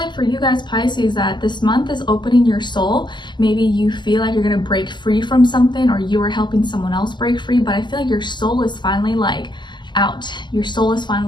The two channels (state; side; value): late; right; 0.21 ms